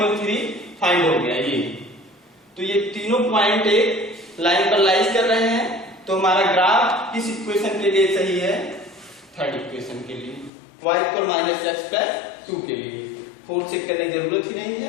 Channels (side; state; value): right; drops out; at 10.5 s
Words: 3 फाइंड हो गया ये, तो ये तीनों पॉइंट एक लाइन पर लाइज कर रहे हैं, तो हमारा ग्राफ किस इक्वेशन के लिए सही है, थर्ड इक्वेशन के लिए, y इक्वल -x प्लस 2 के लिए। फोर्थ चेक करने की जरूरत ही नहीं